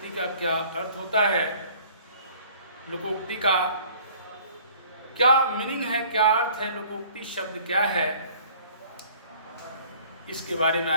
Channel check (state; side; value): inverted; both; correlation -0.53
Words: का क्या अर्थ होता है, लोकोक्ति का क्या मीनिंग है, क्या अर्थ है, लोकोक्ति शब्द क्या है, इसके बारे में